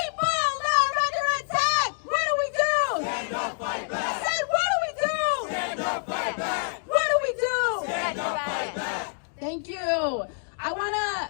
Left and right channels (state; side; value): silent; right; 60 dB below the other